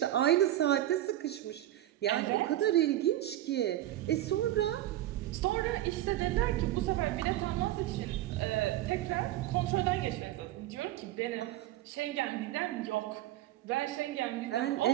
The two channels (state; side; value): quieter; left; 14.1 dB